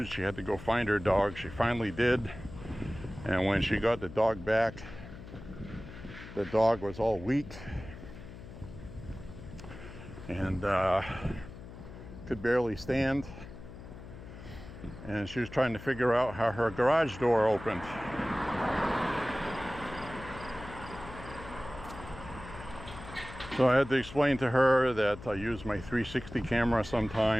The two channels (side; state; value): left; noise; hum, 14 dB below the sound